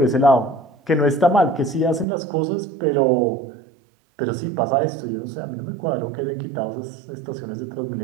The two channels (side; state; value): left; drops out; at 2.1 s